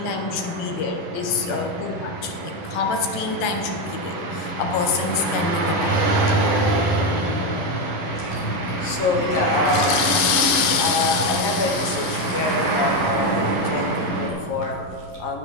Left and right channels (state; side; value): late; right; 12 ms